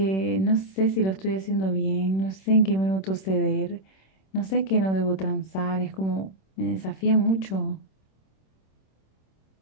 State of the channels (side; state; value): right; late; 26 ms